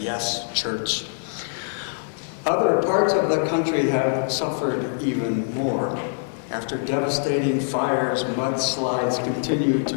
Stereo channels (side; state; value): right; silent; 63 dB below the other